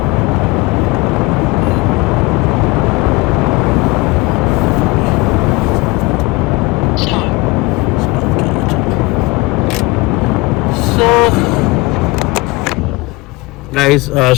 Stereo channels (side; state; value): right; quieter; 22.5 dB